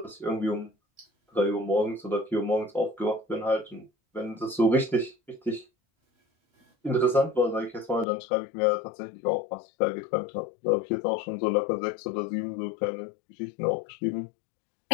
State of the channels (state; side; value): drops out; right; at 8.1 s